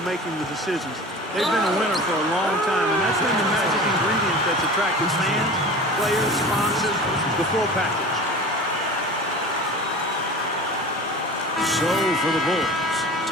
making the decisions. They've been a winner for a long time, and that's been the magic ingredient that's attracted fans, players, sponsors, the full package. So for the Bulls,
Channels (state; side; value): normal; both; correlation 0.37